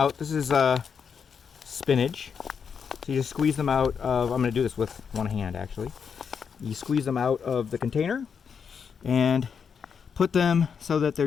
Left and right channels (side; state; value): right; quieter; 6.6 dB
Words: This is spinach, so you just squeeze them out of. I'm going to do this with one hand actually. You squeeze them out of the container and put them so that